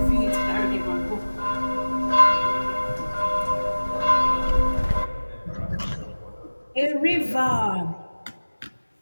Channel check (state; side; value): inverted; both; correlation -1.00